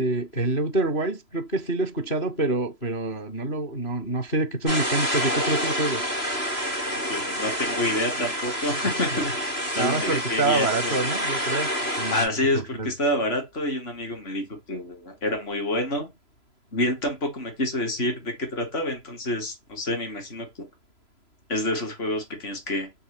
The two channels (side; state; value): right; late; 3.0 ms